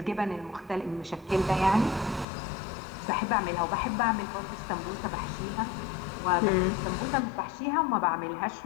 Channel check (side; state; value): right; drops out; at 2.2 s